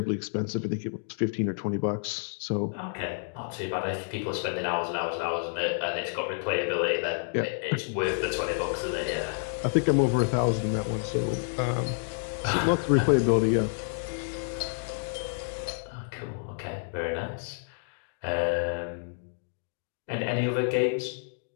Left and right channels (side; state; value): right; silent; digital silence